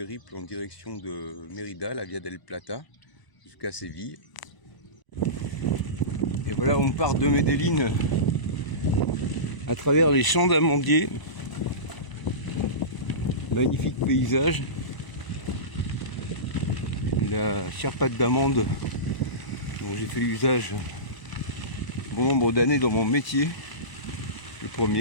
en direction de Mérida, la Via del Plata, jusqu'à Séville. Et voilà, on part de Medellín à travers les champs d'amandiers. Magnifique paysage. La charpate d'amande dont j'ai fait usage bon nombre d'années dans mon métier, le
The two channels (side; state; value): right; late; 1.0 ms